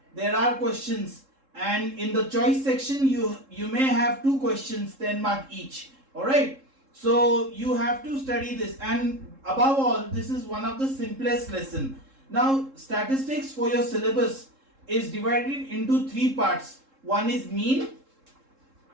there are questions, and in the choice section you may have 2 questions 10 mark each. All right, so you have to study this, and above all this is one of the simplest lesson. Now statistics for your syllabus is divided into 3 parts. One is mean,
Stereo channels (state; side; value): late; left; 3.7 ms